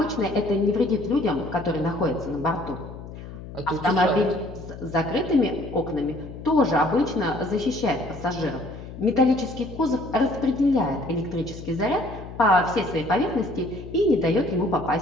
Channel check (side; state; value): left; noise; hum, 13 dB below the sound